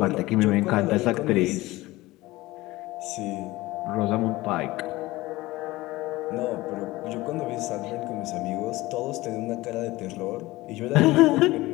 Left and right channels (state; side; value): quieter; right; 19.3 dB